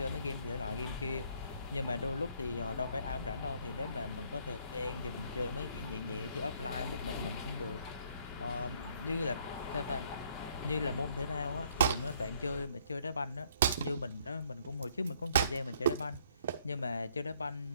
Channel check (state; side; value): inverted; both; correlation -0.65